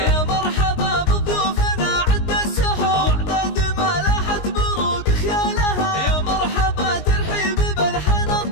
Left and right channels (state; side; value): late; right; 19 ms